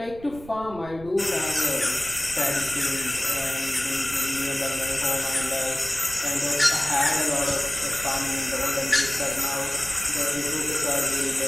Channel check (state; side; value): noise; right; rumble, 17 dB below the sound